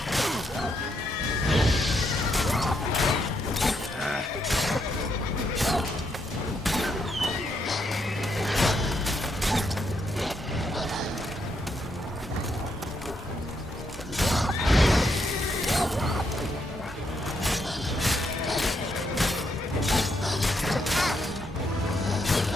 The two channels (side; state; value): both; normal; correlation 0.77